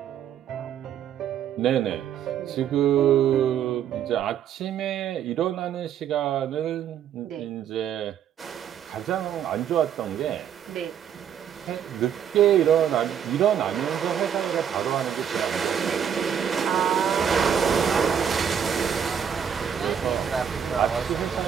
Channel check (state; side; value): quieter; left; 8.6 dB